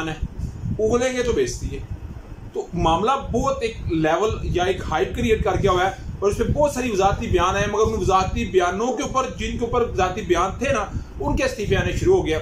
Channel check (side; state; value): both; identical; correlation 1.00